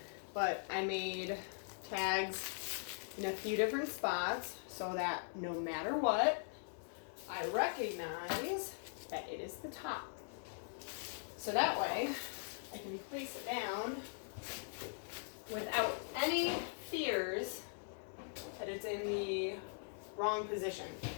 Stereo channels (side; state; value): right; silent; 50 dB below the other